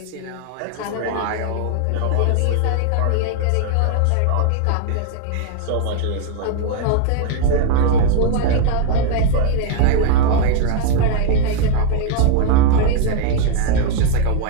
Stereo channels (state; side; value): different; both; correlation 0.00